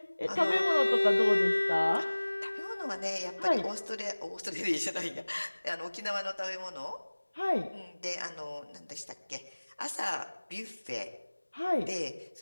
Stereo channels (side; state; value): both; inverted; correlation -1.00